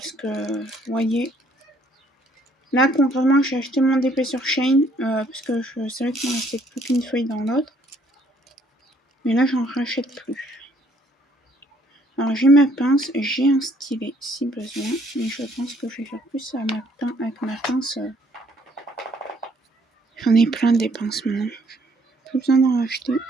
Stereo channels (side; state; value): both; normal; correlation 0.65